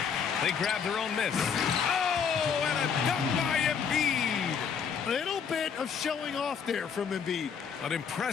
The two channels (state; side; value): quieter; right; 6.8 dB